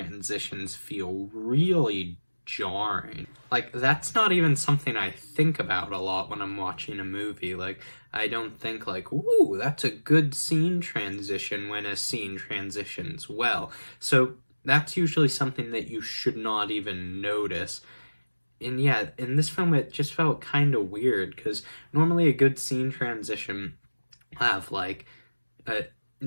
feel really jarring. Like, that's not even something I think about a lot when I'm watching a movie. Like, I don't think like, ooh, that's a good scene transition when a scene transitions well. So that's usually something that you should not even notice. And yeah, in this film it just felt kind of weird, because normally a good scene transition have like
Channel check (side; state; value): both; inverted; correlation -1.00